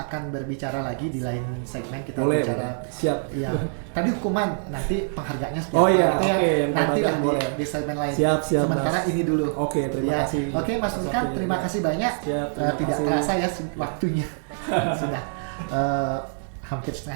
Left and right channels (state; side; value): silent; left; digital silence